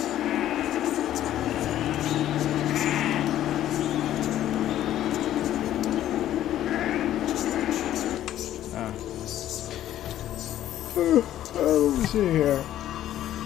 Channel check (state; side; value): quieter; right; 12.4 dB